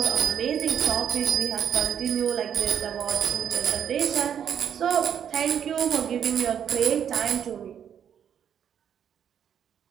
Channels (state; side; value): quieter; left; 8.7 dB